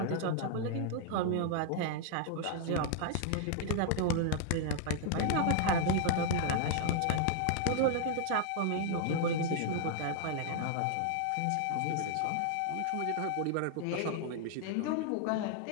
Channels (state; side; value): different; both; correlation 0.00